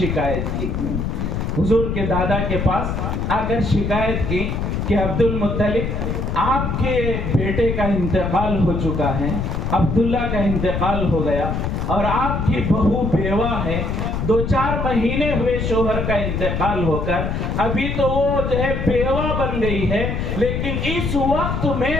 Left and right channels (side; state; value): left; noise; rumble, 1 dB below the sound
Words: کی، حضور کے دادا کے پاس آ کر شکایت کی کہ عبد المطلب آپ کے بیٹے کا انتقال ہو چکا ہے، عبداللہ کا انتقال ہو گیا، اور آپ کی بہو بیوہ ہے، 2-4 مہینے ہوئے شوہر کا انتقال ہو کر، ابھی تو وہ جو ہے بیوہ بن گئی ہے، لیکن اس وقت میں